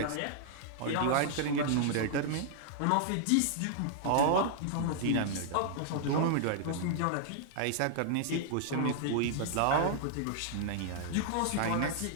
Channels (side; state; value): both; different; correlation -0.01